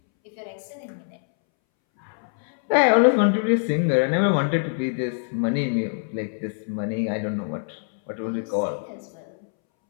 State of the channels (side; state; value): right; silent; 62 dB below the other